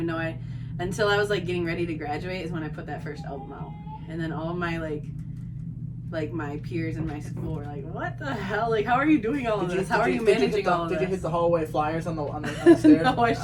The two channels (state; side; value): identical; both; correlation 1.00